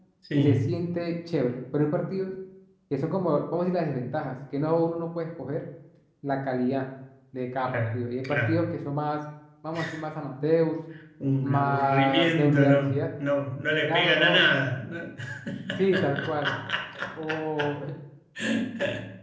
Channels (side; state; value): both; identical; correlation 1.00